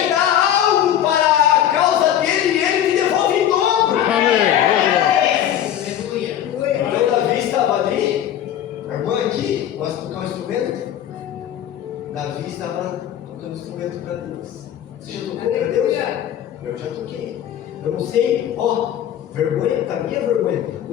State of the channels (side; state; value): right; quieter; 10.7 dB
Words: dá algo para a causa dele e ele te devolve em dobro. Então Davi estava ali. A irmã aqui gosta de tocar um instrumento. Davi estava tocando instrumento para Deus. Você já tocou para Deus? Eu já toquei. Eu não sei, vergonha, para mim é vergonha.